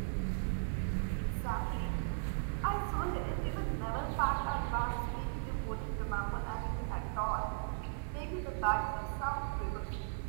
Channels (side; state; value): left; silent; digital silence